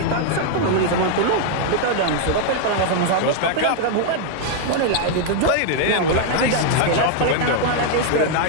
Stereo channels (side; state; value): both; different; correlation 0.00